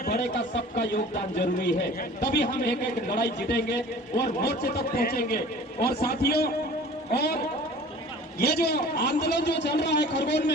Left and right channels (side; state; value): both; normal; correlation 0.45